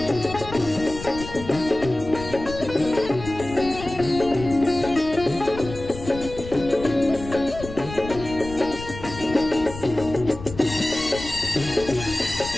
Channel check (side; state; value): left; noise; rumble, 12 dB below the sound